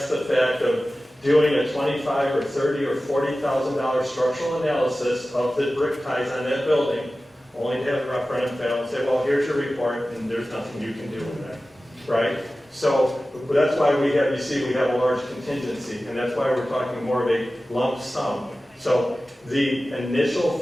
the fact of doing a $25,000 or $30,000 or $40,000 structural analysis of the brick ties on that building, only to have a referendum fail and say, well, here's your report, and there's nothing you can do with that, right? So that's why we have a large contingency, and that's why we're talking more of a lump sum. So the initial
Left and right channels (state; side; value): normal; both; correlation 0.95